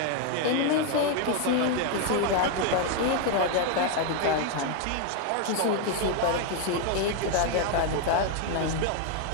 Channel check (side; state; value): both; different; correlation 0.01